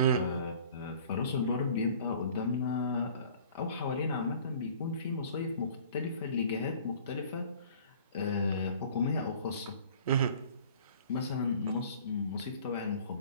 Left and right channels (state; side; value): inverted; both; correlation -0.49